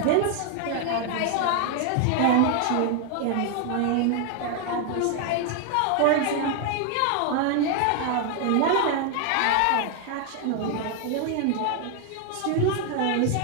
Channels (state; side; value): different; both; correlation 0.00